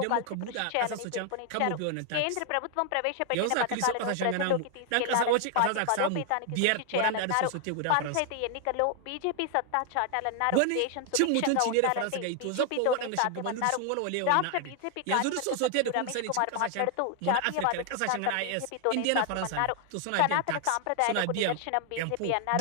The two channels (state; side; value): different; both; correlation 0.00